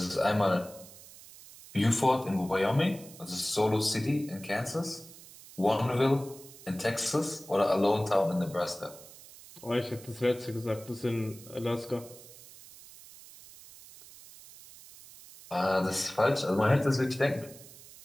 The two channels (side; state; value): right; noise; hiss, 19 dB below the sound